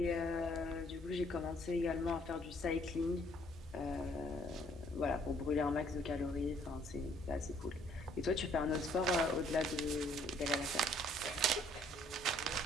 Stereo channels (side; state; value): both; normal; correlation 0.63